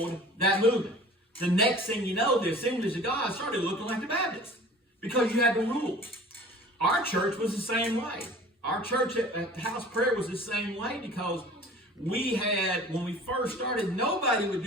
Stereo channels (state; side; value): normal; both; correlation 0.45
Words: that movement. The next thing you know, the Assemblies of God started looking like the Baptists because you had the rules. Our church was the same way. Our church at House Prayer was the same way because we had, when we first started, nobody would